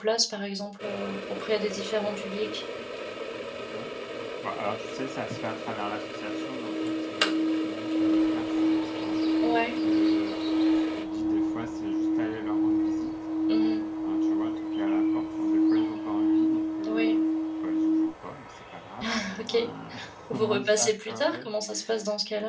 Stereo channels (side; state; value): both; identical; correlation 1.00